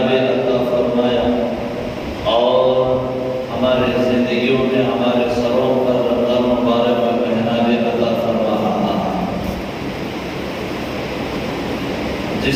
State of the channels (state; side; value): identical; both; correlation 1.00